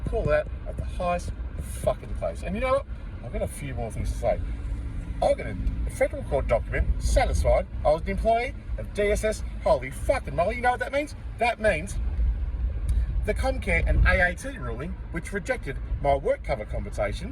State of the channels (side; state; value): both; identical; correlation 1.00